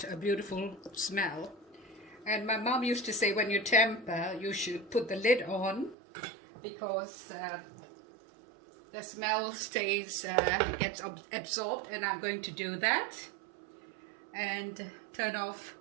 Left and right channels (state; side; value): drops out; left; at 6.0 s